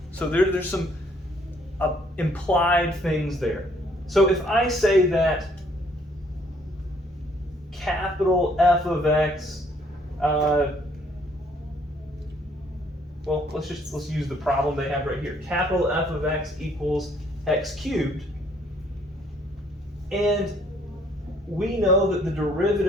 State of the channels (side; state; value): both; normal; correlation 0.64